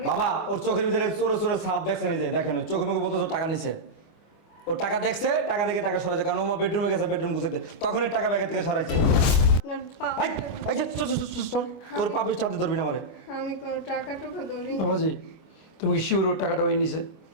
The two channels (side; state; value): right; late; 25 ms